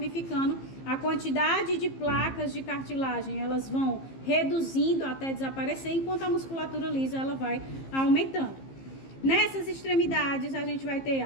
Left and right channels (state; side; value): late; right; 15 ms